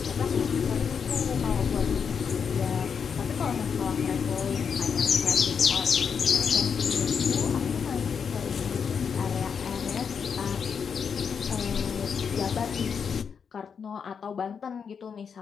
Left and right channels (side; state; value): right; quieter; 6.6 dB